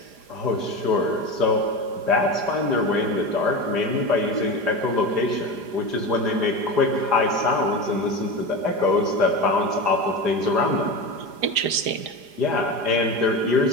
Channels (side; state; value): left; late; 4.9 ms